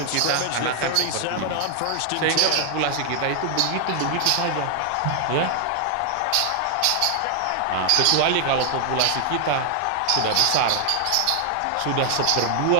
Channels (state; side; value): different; both; correlation 0.00